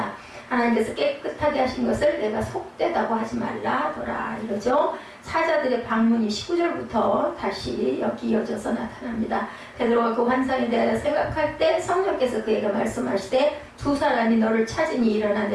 하나님께서 깨끗하게 하신 것을 내가 속되다고 하지 말라 하더라 이러죠. 사자들의 방문이 19절부터 다시 여기 이어져서 나타납니다. 베드로가 그 환상에 대하여 생각할 때 성령께서 그에게 말씀하시되 두 사람이 너를 찾으니 일어나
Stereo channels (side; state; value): both; identical; correlation 1.00